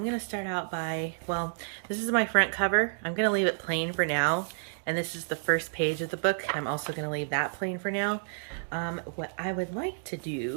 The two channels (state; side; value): silent; left; digital silence